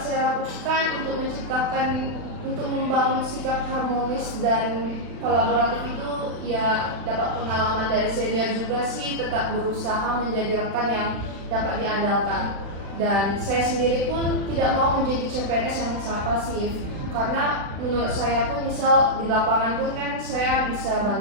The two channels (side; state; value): left; late; 36 ms